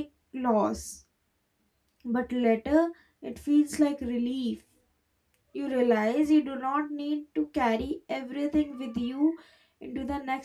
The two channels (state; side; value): identical; both; correlation 1.00